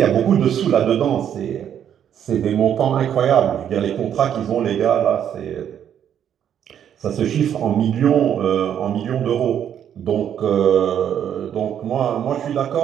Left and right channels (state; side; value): quieter; left; 9.4 dB